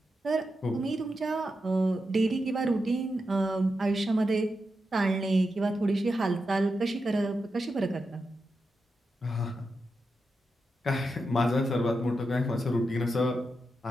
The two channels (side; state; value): both; normal; correlation 0.87